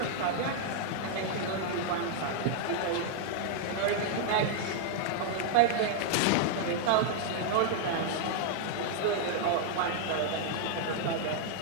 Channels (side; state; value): both; different; correlation -0.01